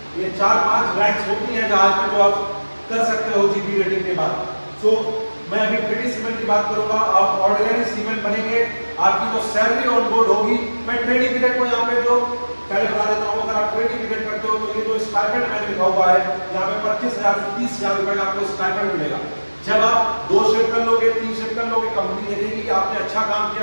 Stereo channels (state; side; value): inverted; both; correlation -1.00